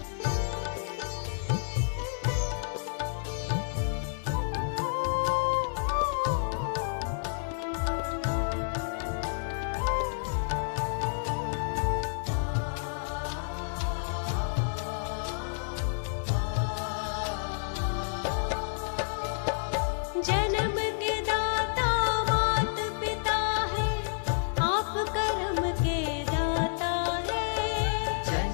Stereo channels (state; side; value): silent; right; digital silence